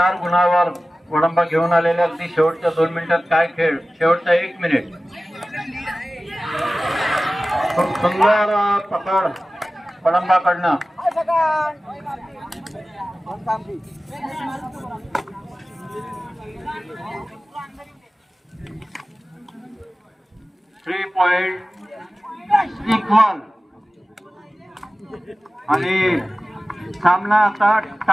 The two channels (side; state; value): both; normal; correlation 0.96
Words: गुणावर वडंबा घेऊन आलेल्या अगदी शेवटच्या 2 मिनिटात काय खेळ. शेवटचा 1 मिनिट. खूप सुंदर पकड वडंबाकडनं. 3 पॉइंट इक्वल आणि सामना आता